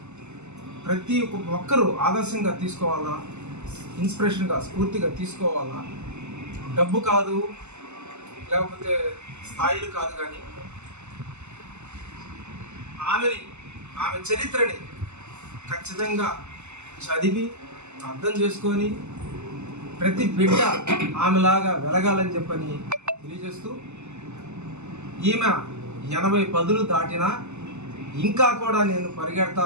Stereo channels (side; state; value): left; late; 0.83 ms